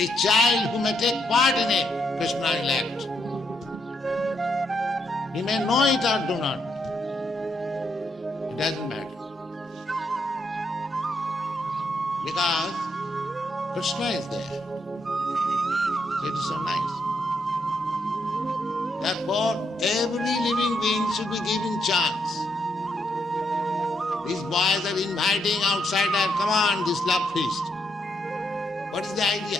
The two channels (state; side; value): normal; both; correlation 0.77